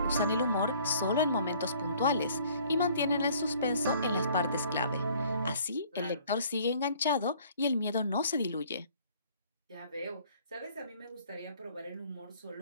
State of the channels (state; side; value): inverted; both; correlation -0.57